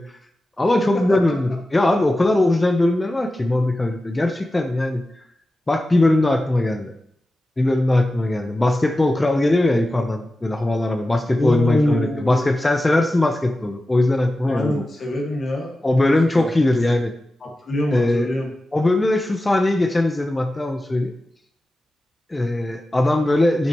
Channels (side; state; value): both; normal; correlation 0.94